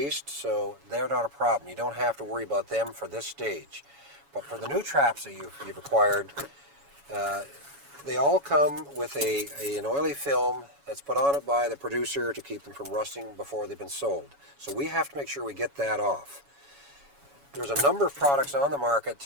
so they're not a problem. You don't have to worry about them for this stage. But for the new traps that you've acquired, they all come with an oily film that's put on it by the producer to keep them from rusting before they've been sold. So we have to make sure we get that off. There's a number of products on the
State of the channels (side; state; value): left; late; 7.1 ms